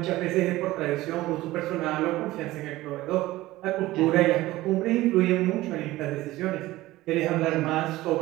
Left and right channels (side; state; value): left; quieter; 17.5 dB